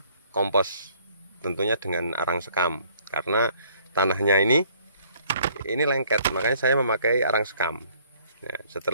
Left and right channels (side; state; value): both; inverted; correlation -0.60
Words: kompos, tentunya dengan arang sekam. Karena tanahnya ini lengket, makanya saya memakai arang sekam. Nah,